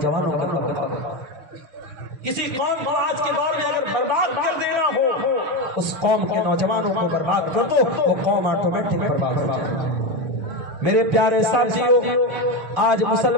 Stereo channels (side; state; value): left; late; 6.4 ms